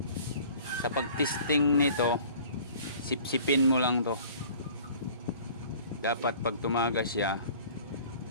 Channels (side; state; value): both; inverted; correlation -0.48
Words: Sa pagtesting nito, sipsipin mo lang to. Dapat pag tumagas siya,